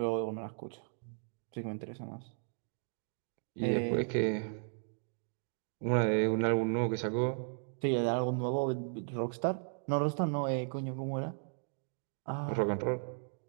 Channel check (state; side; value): silent; left; digital silence